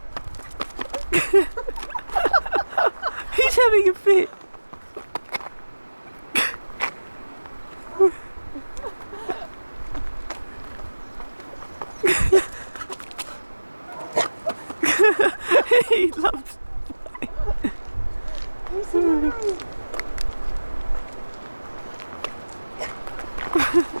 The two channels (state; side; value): inverted; both; correlation -1.00